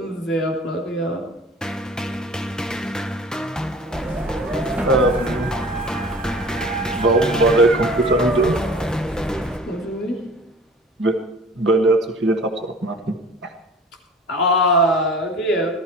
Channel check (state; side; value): normal; both; correlation 0.43